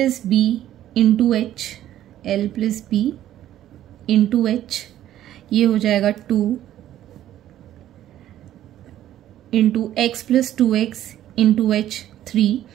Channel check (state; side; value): quieter; left; 12.4 dB